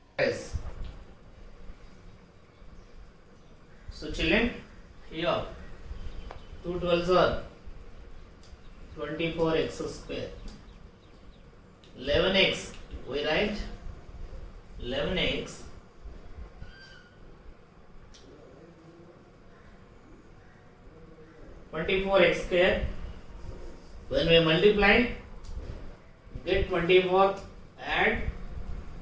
Yes. So, children, here 2 12s are 24x square. 11x, we write 11x (24x square). When we multiply, get 24, add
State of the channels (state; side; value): identical; both; correlation 1.00